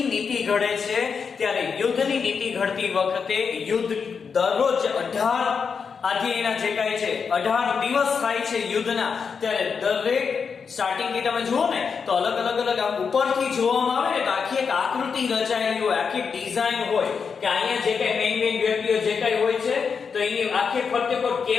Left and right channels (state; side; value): quieter; right; 5.9 dB